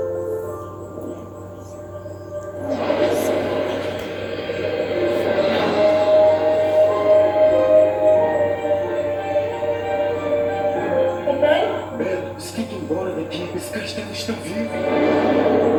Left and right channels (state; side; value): identical; both; correlation 1.00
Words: Bela, você tem que ir embora daqui. Esse castelo está vivo.